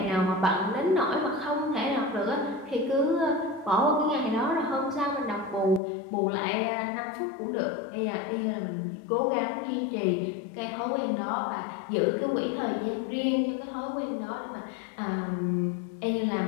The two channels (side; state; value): right; drops out; at 5.8 s